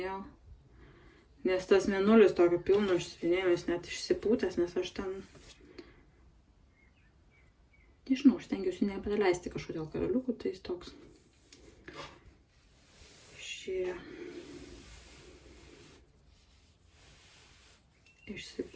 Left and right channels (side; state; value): both; identical; correlation 1.00